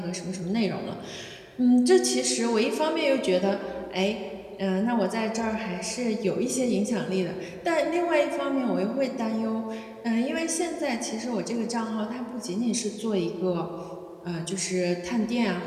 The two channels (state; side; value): identical; both; correlation 1.00